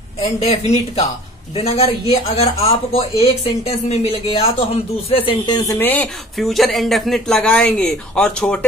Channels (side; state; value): both; normal; correlation 0.47